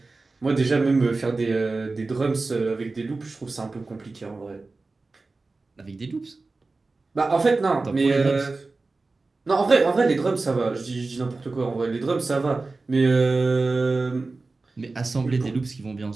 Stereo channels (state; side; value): quieter; left; 3.6 dB